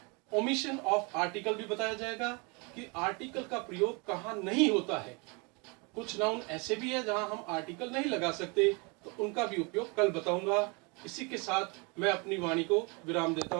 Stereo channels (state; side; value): quieter; left; 30.7 dB